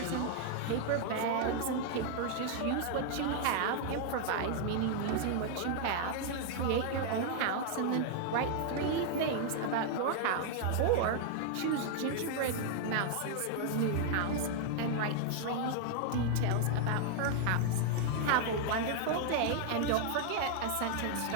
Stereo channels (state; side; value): different; both; correlation 0.00